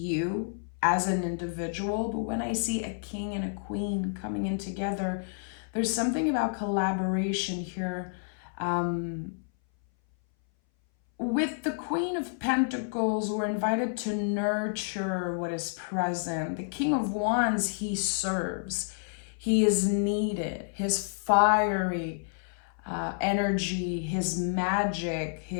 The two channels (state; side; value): silent; right; 58 dB below the other